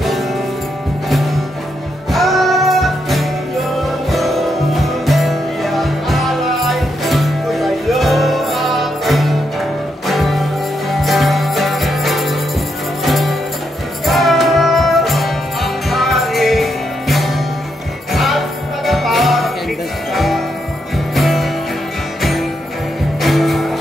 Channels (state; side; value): normal; both; correlation 0.80